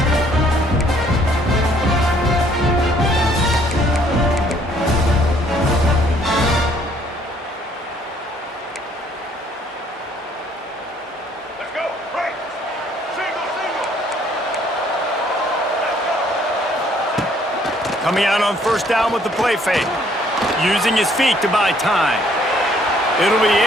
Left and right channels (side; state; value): both; normal; correlation 0.63